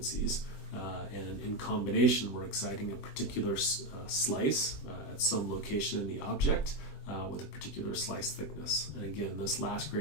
And in combination, we're exciting a particular slice at some location in the object with a particular slice thickness. And again, this last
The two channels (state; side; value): late; right; 21 ms